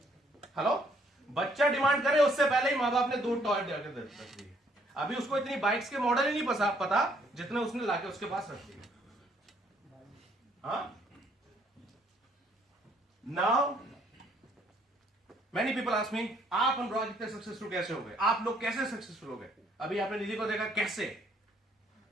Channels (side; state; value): both; normal; correlation 0.66